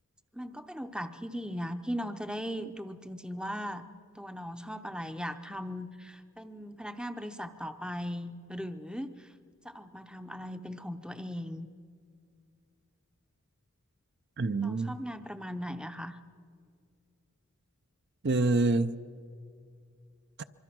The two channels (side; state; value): both; normal; correlation 0.73